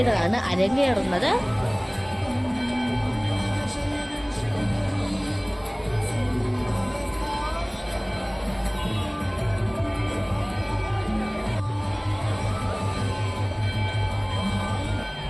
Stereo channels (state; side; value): identical; both; correlation 1.00